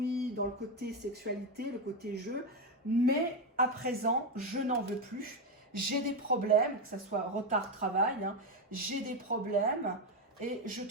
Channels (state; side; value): normal; both; correlation 0.08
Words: dans le côté sexualité, le côté jeu. Mais à présent, je n'en veux plus. J'ai des problèmes, que ce soit retard travail, hein, j'ai des problèmes et je